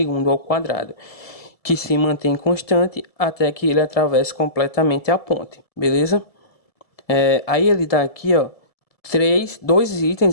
ao quadrado, que se mantém constante até que ele atravesse completamente a ponte, beleza? Aí ele dá aqui, ó, dois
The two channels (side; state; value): right; late; 1.7 ms